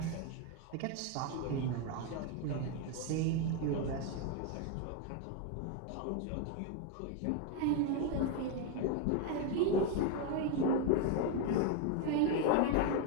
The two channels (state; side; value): different; both; correlation 0.01